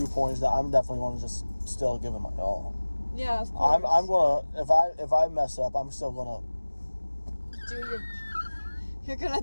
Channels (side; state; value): both; inverted; correlation -1.00